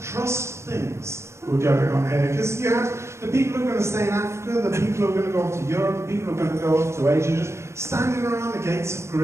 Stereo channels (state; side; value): late; left; 0.13 ms